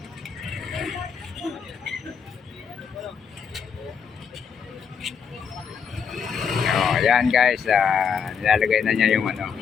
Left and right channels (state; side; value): quieter; right; 6.6 dB